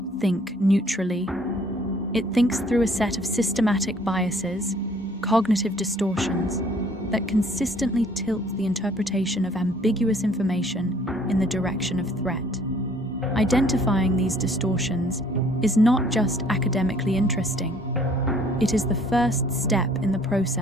think neutrally. It thinks through a set of systematic biases, cognitive distortions, that consistently tilt the interpretation of ambiguous information in the direction of threat. Identifying these distortions is not just academically interesting. It is the first step in the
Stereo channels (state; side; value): normal; both; correlation 0.59